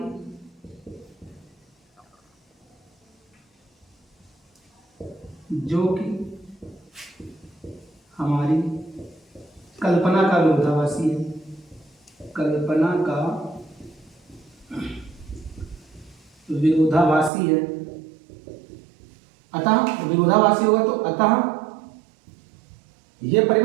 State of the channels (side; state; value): left; drops out; at 17.3 s